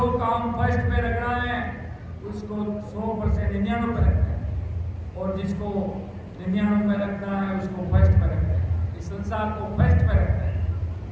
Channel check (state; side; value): identical; both; correlation 1.00